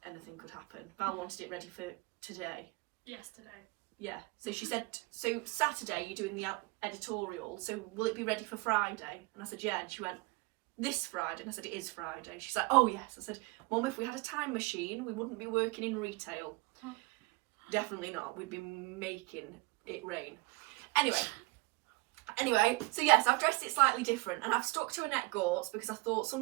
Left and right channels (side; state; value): left; quieter; 26.3 dB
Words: anything could happen. Val wanted it ready for today. Yesterday. Yeah, so she said, so Saturday you're doing the editorial, so will it be ready for Friday? And I said, yeah, and she went, this Friday? And I said, it is Friday. She's like, oh yes. I said, Mum, if we had a time machine, we wouldn't be working in retail. Definitely not. We'd be making it rain. Anyway, so yes, I've dressed it slightly different, and I've stuck to Annette Gortz because I thought